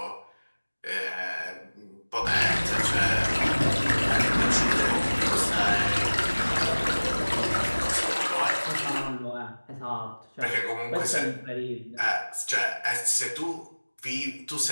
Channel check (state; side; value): inverted; both; correlation -1.00